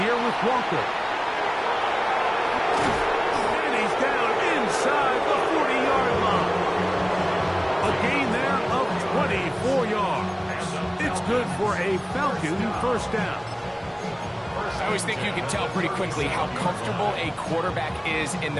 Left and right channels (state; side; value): identical; both; correlation 1.00